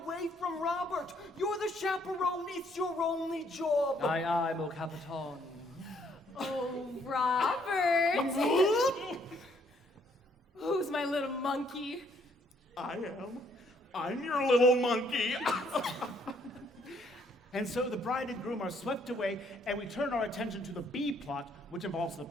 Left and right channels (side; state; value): both; normal; correlation 0.67